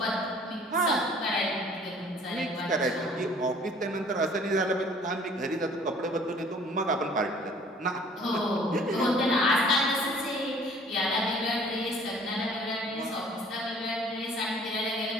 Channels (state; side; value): normal; both; correlation 0.54